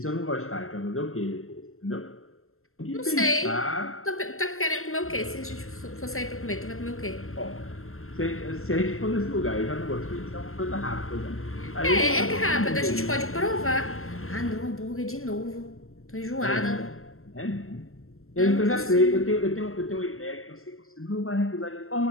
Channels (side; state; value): right; late; 0.62 ms